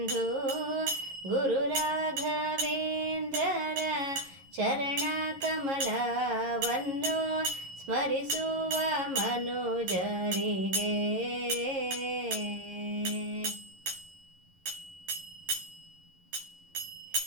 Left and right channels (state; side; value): late; left; 11 ms